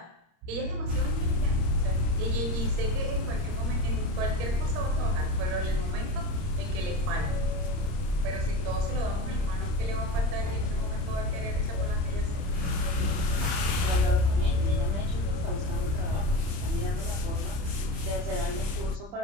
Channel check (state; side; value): late; left; 30 ms